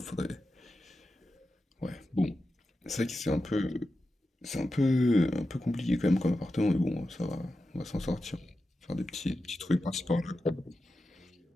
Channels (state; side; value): normal; both; correlation 0.91